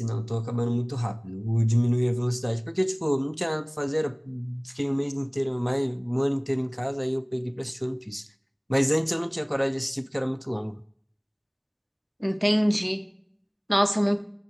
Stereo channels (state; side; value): identical; both; correlation 1.00